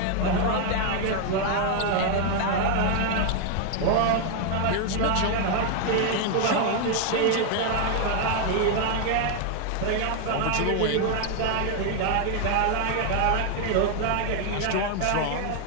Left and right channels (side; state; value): both; different; correlation 0.00